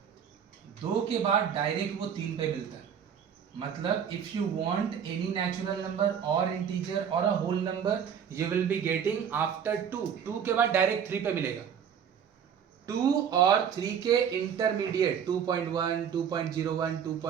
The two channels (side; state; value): left; quieter; 8.0 dB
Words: 2 के बाद डायरेक्ट वो 3 पे मिलता है। मतलब if you want any natural number और इंटीजर और a whole number, you will be getting after 2 के बाद डायरेक्ट 3 पे मिलेगा। 2 और 3 के इंटरमीडिएट 2.1 2.01